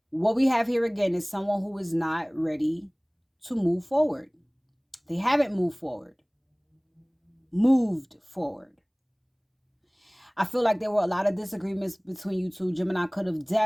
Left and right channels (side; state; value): both; identical; correlation 1.00